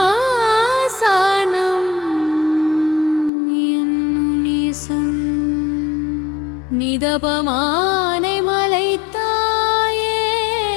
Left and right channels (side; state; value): right; drops out; at 3.3 s